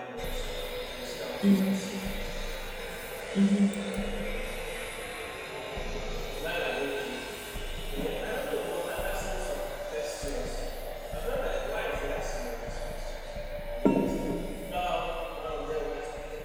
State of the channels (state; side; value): identical; both; correlation 1.00